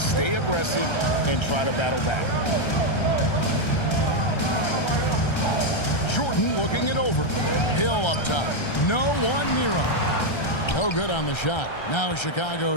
aggressive and try to battle back. Jordan looking it over. Hill up top. No one near him. No good on the shot. Now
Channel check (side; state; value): right; late; 1.3 ms